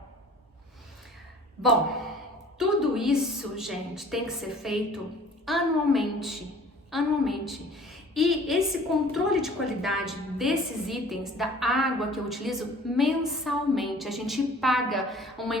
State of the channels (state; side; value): normal; both; correlation 0.49